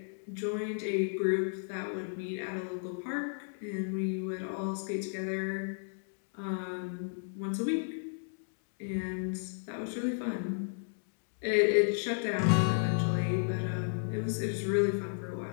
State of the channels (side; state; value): right; silent; digital silence